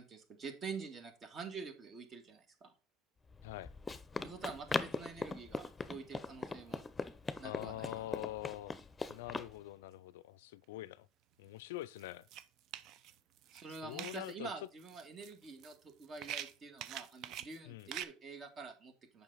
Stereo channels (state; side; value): normal; both; correlation 0.55